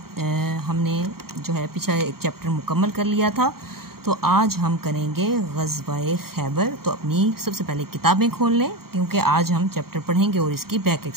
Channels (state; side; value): late; left; 0.94 ms